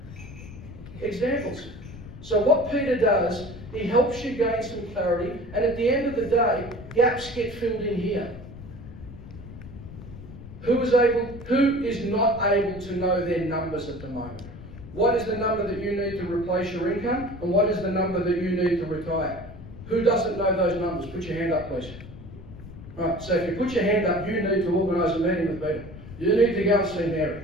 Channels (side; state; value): left; noise; rumble, 14 dB below the sound